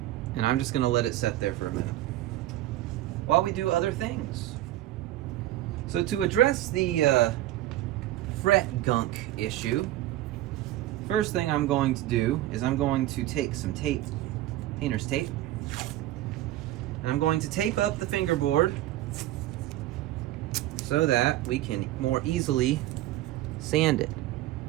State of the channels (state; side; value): quieter; left; 14.9 dB